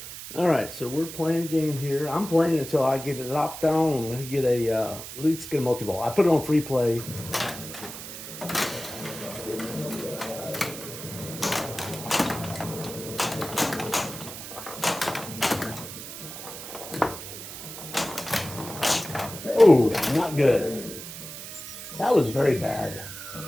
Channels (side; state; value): right; noise; hiss, 11 dB below the sound